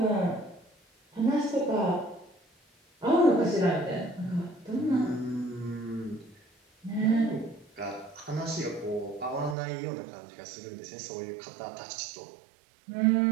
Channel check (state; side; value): drops out; left; at 9.6 s